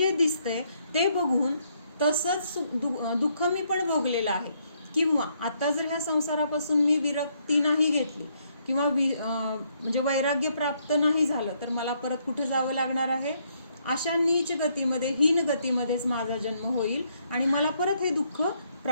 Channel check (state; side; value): inverted; both; correlation -0.72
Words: दिसतंय ते बघून तसंच दुःख मी पण भोगलेलं आहे. किंवा आता जर ह्या संसारापासून मी विरक्ती नाही घेतली किंवा म्हणजे वैराग्य प्राप्त नाही झालं, तर मला परत कुठे जावं लागणार आहे, अशा नीच गतीमध्ये, हीन गतीमध्येच माझा जन्म होईल आणि मला परत हे दुःख